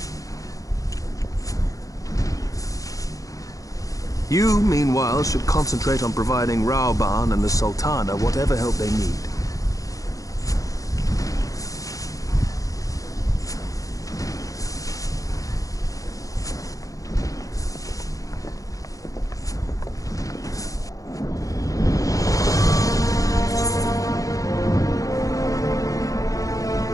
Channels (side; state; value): right; late; 0.17 ms